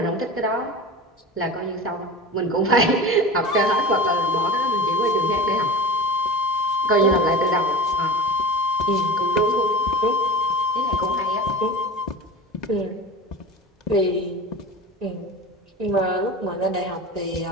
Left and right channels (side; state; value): both; normal; correlation 0.31